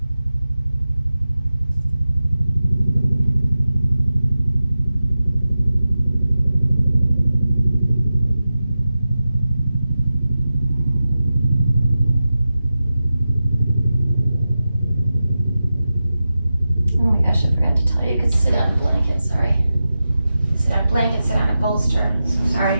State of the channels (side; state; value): both; inverted; correlation -0.92